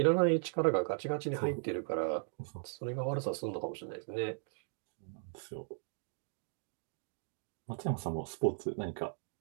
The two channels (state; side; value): silent; left; digital silence